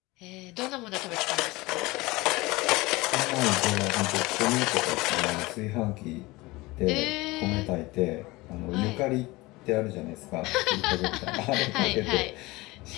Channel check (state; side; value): quieter; right; 21.7 dB